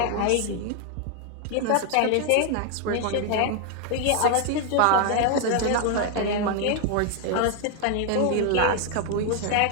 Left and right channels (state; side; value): different; both; correlation 0.00